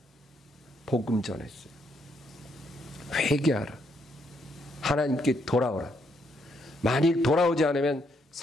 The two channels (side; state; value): both; normal; correlation 0.74